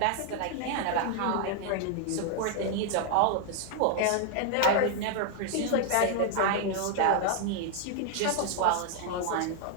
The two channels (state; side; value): different; both; correlation 0.00